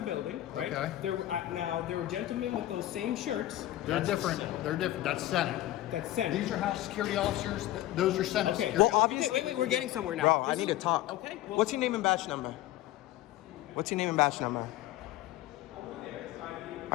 building, right? Okay. There were gentlemen with those same shirts. They're different. They're different. That's Senate. That's Senate. These are House security officers. Those are Senate Okay. security Well, officers. obviously. Wait, we're getting somewhere now. Bro, I This need is- to talk. Okay. Well, What's your name and badge number? What's your name and badge number?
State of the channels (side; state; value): right; quieter; 14.9 dB